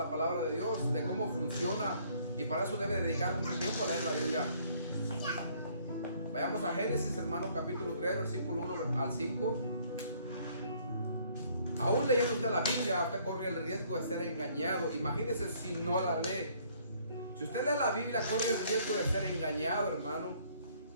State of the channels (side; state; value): both; inverted; correlation -0.62